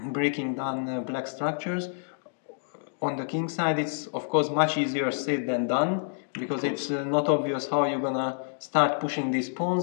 breaking down black structures. On the king side, it's of course much easier said than done, because it's not obvious how you're gonna start pushing these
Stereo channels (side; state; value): right; silent; digital silence